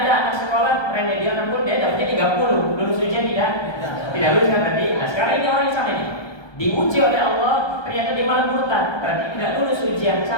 anak sekolah remedial 60, dia dapatnya 30, lulus ujian tidak? Tidak lulus kan tadi. Nah sekarang ini orang yang sama ini diuji oleh Allah, ternyata dia malah murtad, berarti tidak lulus ujian.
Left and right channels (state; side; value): late; right; 1.2 ms